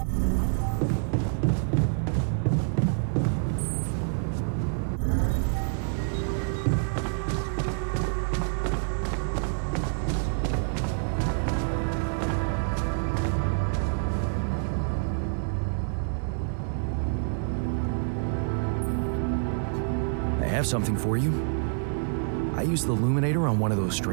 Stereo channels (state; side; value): silent; left; digital silence